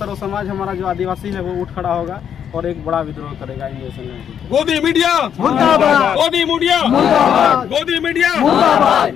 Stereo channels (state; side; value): quieter; right; 8.6 dB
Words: समाज हमारा जो आदिवासी है वो उठ खड़ा होगा और एक बड़ा विद्रोह करेगा इन देशों में। गोदी मीडिया मुर्दाबाद, गोदी मीडिया मुर्दाबाद, गोदी मीडिया मुर्दाबाद,